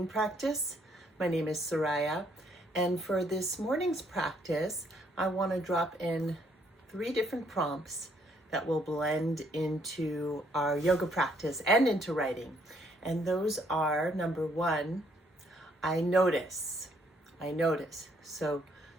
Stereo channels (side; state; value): both; normal; correlation 0.69